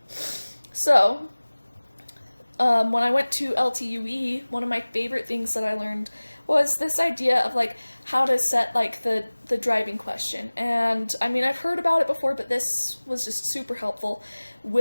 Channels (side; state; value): both; inverted; correlation -1.00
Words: So, when I went to LTUE, one of my favorite things that I learned was this idea of like how to set like the driving question. And I mean, I've heard about it before, but this was just super helpful.